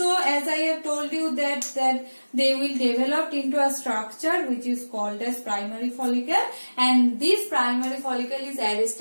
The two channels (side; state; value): both; inverted; correlation -1.00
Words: as I have told you that they will develop into a structure which is called as primary follicle, and this primary follicle is